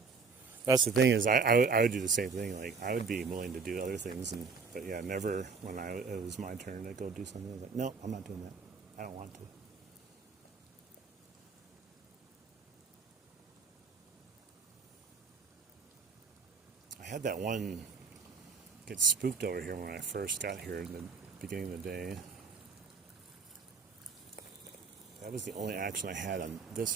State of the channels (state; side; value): quieter; left; 5.0 dB